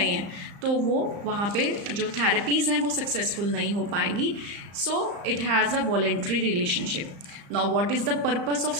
है, तो वो वहाँ पे जो थेरेपीज़ हैं वो सक्सेसफुल नहीं हो पाएंगी. So it has a voluntary relationship. Now what is the purpose of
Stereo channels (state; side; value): late; left; 35 ms